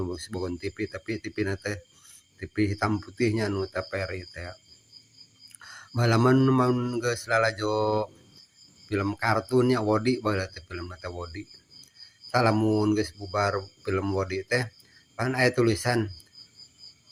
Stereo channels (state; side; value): identical; both; correlation 1.00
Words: boga TV tapi TV na teh TV hitam putihnya nu TVRI teh. Baheula mun geus lalajo film kartun nya Wody baheula teh filmna teh Wody. Tah lamun geus bubar film Wody teh pan aya tulisan